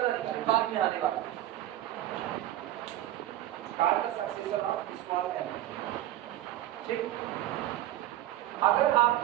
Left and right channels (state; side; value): quieter; left; 14.0 dB